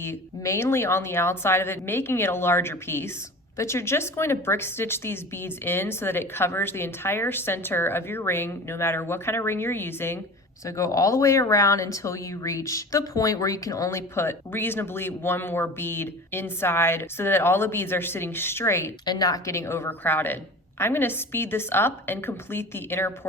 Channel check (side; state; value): both; normal; correlation 0.36